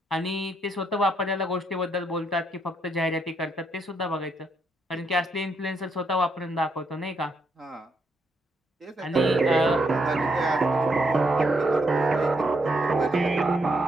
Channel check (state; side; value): normal; both; correlation 0.76